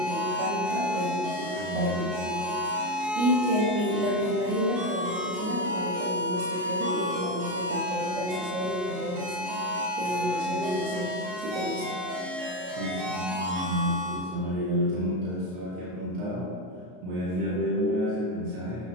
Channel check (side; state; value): left; late; 33 ms